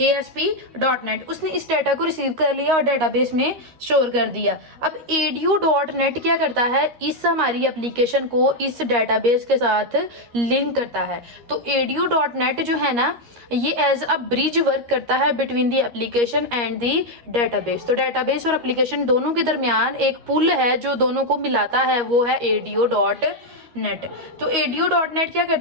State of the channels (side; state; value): left; late; 13 ms